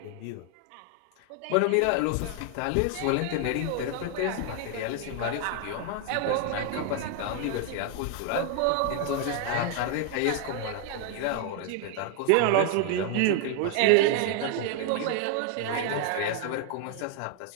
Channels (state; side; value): different; both; correlation 0.00